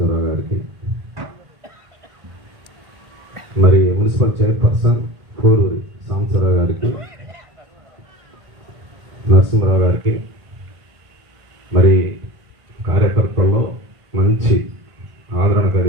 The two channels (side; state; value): left; late; 1.5 ms